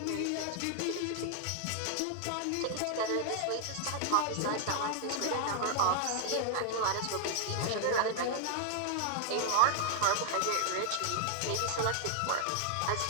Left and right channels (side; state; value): both; different; correlation 0.00